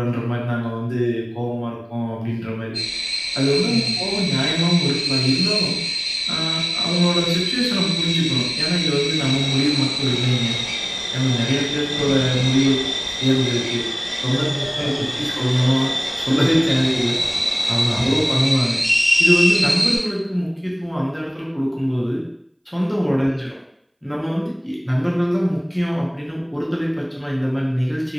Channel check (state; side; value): identical; both; correlation 1.00